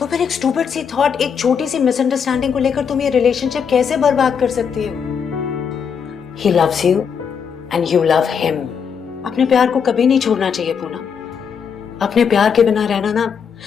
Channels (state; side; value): quieter; right; 6.9 dB